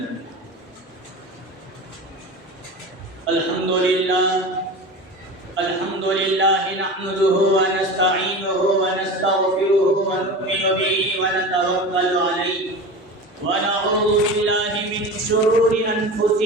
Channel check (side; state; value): both; normal; correlation 0.31